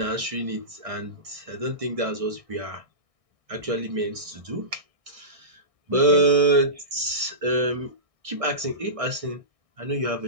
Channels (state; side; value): late; left; 1.6 ms